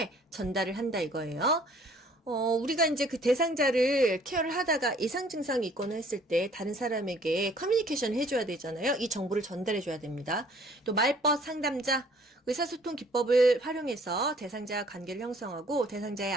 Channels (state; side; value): normal; both; correlation 0.57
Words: 전달을 한다 이거예요. 우리가 이제 그 대상자를 케어를 하다가 이상 증상이 있거나 했을 때 다른 사람에게 커뮤니케이션 해줘야 되잖아요. 이 정보를 전달해줘야 됩니다. 또 말벗 상담자, 의사소통 기법을 활용해서 대상자와 관계를 형성하고 대상자의